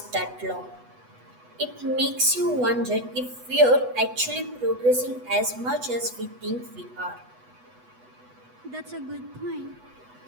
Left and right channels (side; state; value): left; late; 8.1 ms